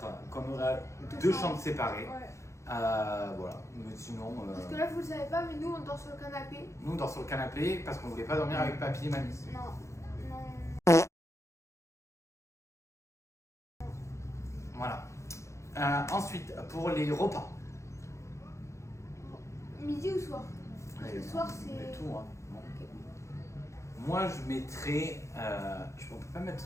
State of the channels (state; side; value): late; right; 0.14 ms